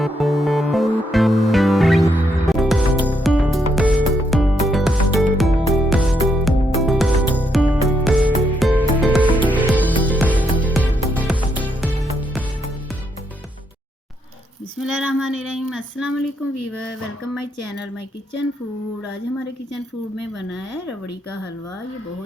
अस्सलाम वालेकुम viewer, welcome my channel my kitchen food. आज हमारे किचन फूड में बना है रबड़ी का हलवा। ये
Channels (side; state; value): both; normal; correlation 0.77